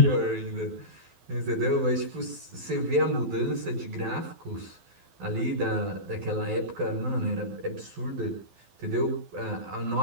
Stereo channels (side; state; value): left; late; 12 ms